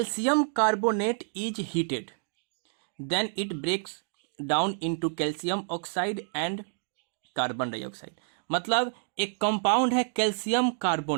carbonate is heated then it breaks down into calcium oxide and carbon dioxide. मतलब एक कंपाउंड है कैल्शियम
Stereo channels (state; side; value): silent; left; digital silence